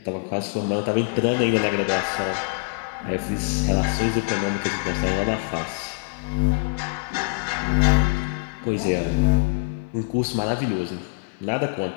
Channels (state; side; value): silent; right; 63 dB below the other